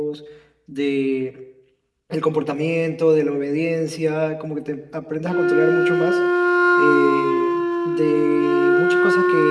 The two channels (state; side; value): identical; both; correlation 1.00